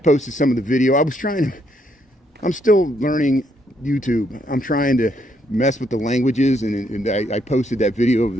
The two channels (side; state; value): both; normal; correlation 0.73